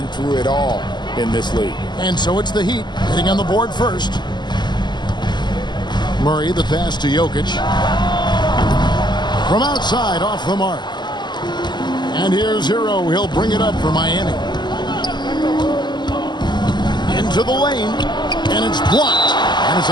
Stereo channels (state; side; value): late; right; 0.21 ms